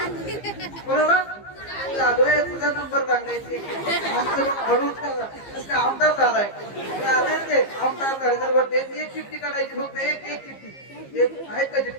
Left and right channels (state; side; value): late; right; 15 ms